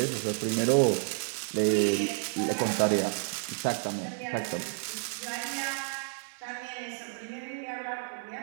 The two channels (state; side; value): silent; left; 57 dB below the other